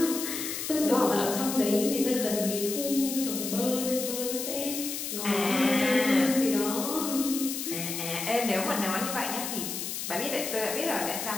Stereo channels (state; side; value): noise; left; hiss, 5 dB below the sound